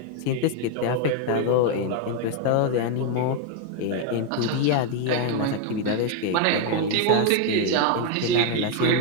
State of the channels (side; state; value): both; different; correlation 0.01